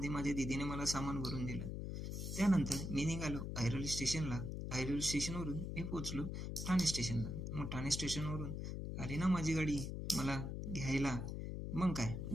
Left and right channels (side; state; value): left; noise; hum, 4 dB below the sound